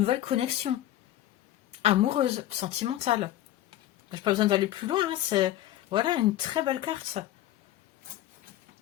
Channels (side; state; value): right; quieter; 13.7 dB